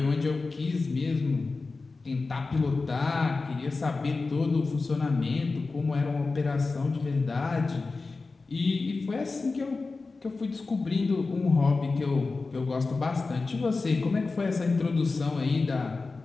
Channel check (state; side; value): quieter; right; 3.9 dB